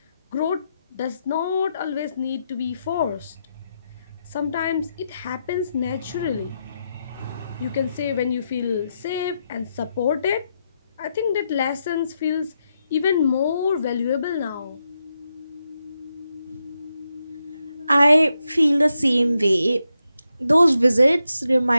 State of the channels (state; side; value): inverted; both; correlation -0.84